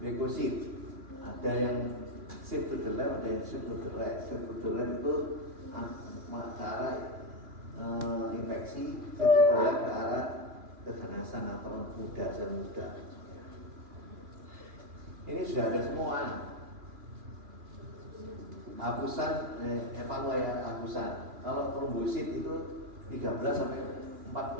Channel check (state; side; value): late; left; 3.0 ms